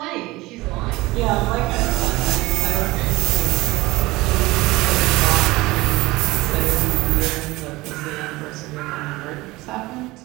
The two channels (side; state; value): left; quieter; 20.4 dB